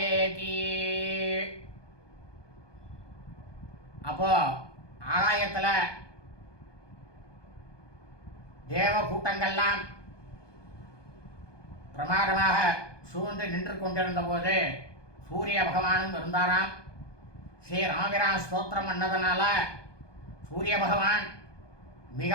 அப்போ ஆகாயத்தில் தேவ கூட்டங்கள்லாம் பிரமாதமாக சூழ்ந்து நின்று கொண்டிருந்த போது சூரிய பகவானும் இருந்தாராம். ஸ்ரீ ராமபிரான் ஸ்தோத்திரம் பண்ணதுனால சூரிய பகவான்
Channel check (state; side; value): late; right; 1.2 ms